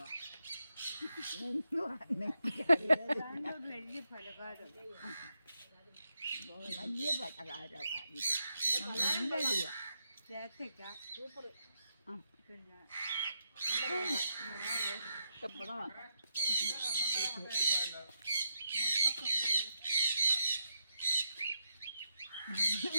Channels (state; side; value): inverted; both; correlation -0.83